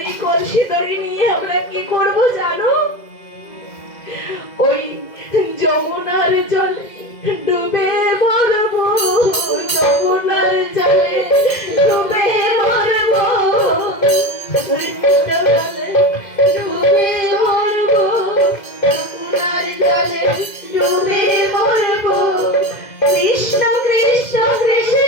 এই কলসি দড়ি নিয়ে আমরা কি করব জানো? ওই যমুনার জলে ডুবে মরবো, যমুনার জলে ডুবে মরবো, ডুবে মরবো, যমুনার জলে ডুবে মরবো। কৃষ্ণ কৃষ্ণ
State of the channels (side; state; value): right; late; 2.0 ms